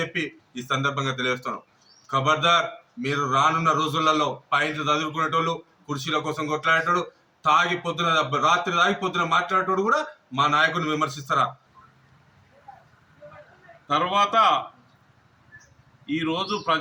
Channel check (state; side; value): identical; both; correlation 1.00